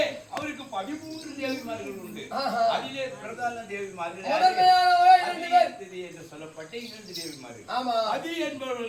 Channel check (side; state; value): both; identical; correlation 1.00